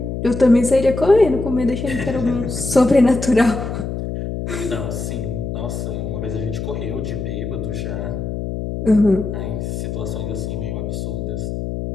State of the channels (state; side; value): noise; left; hum, 4 dB below the sound